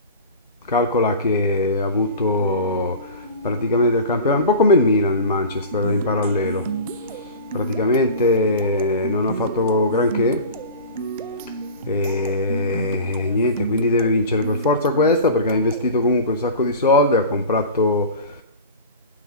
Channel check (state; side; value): inverted; both; correlation -0.34